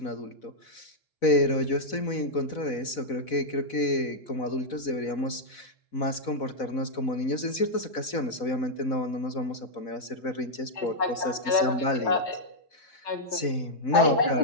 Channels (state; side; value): late; right; 4.0 ms